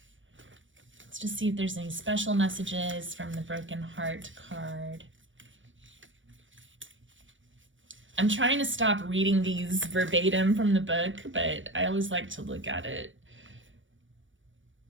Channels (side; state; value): left; late; 0.56 ms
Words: Let's just see if there's any special messages from the broken heart card. I'm trying to stop reading these verbatim from the book, but I always like to look at it.